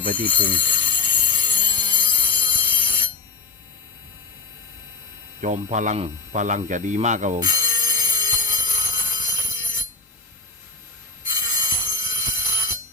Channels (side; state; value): right; quieter; 4.5 dB